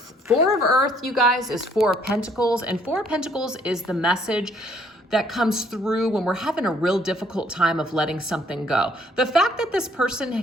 Four of Earth, you guys, is Four of Pentacles, and Four of Pentacles is the message that comes through when we're having a real difficult time of letting something go. The fact that this person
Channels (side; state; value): both; normal; correlation 0.64